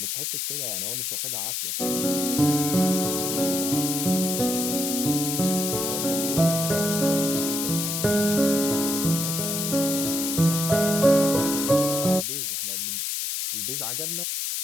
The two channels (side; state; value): left; noise; hiss, 1 dB below the sound